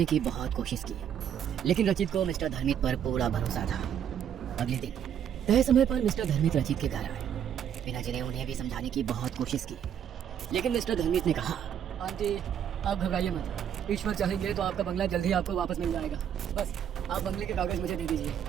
की बहुत कोशिश की, लेकिन रचित को मिस्टर धर्मिक पर पूरा भरोसा था। अगले दिन तय समय पर मिस्टर धर्मिक रचित के घर आए। वीणा जी ने उन्हें भी समझाने की बहुत कोशिश की, लेकिन मिस्टर धर्मिक ने कहा, आंटी आप घबराइए मत, ईश्वर चाहेंगे तो आपका बंगला जल्दी आपको वापस मिल जाएगा। बस आप बंगले के कागज मुझे दे दीजिए।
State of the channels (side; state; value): left; quieter; 9.0 dB